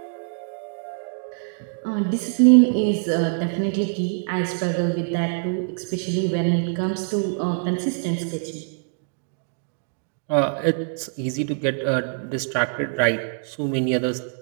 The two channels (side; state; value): left; silent; digital silence